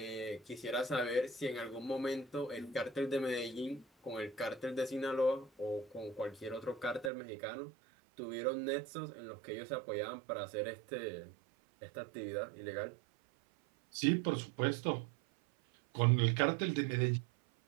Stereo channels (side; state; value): left; drops out; at 7.1 s